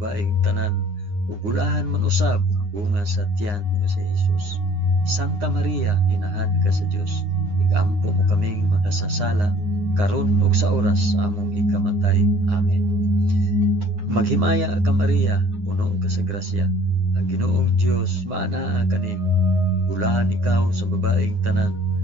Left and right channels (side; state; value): left; late; 9.7 ms